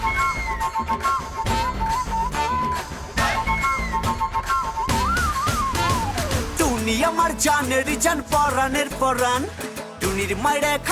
টুনি আমার জানের জান পরানের পরান, টুনির মারে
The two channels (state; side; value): identical; both; correlation 1.00